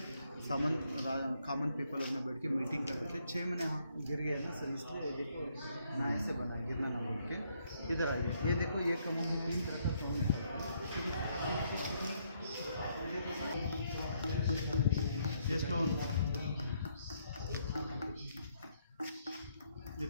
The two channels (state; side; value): inverted; both; correlation -0.72